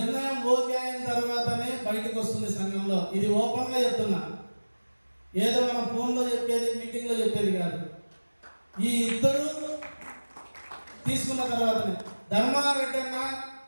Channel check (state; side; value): inverted; both; correlation -1.00